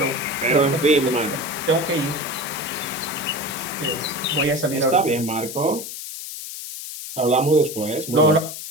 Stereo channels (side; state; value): left; noise; hiss, 9 dB below the sound